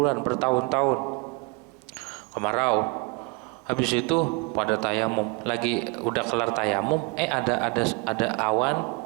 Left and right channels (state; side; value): quieter; left; 29.5 dB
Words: bertahun-tahun kemarau. Habis itu pada tayamum, lagi udah kelar tayamum, ada awan